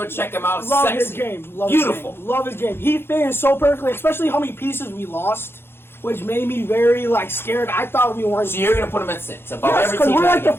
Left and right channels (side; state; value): right; late; 0.11 ms